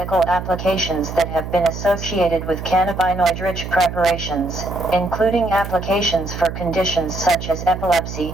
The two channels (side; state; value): right; noise; hum, 8 dB below the sound